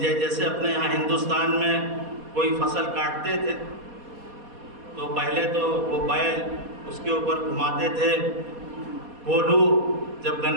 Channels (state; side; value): late; left; 4.2 ms